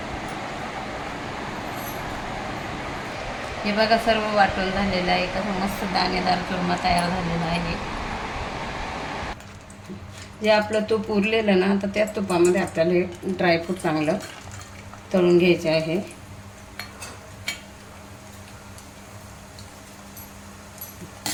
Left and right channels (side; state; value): both; identical; correlation 1.00